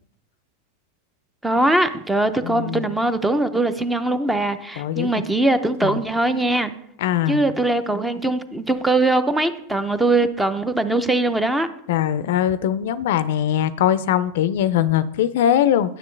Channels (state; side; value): normal; both; correlation 0.42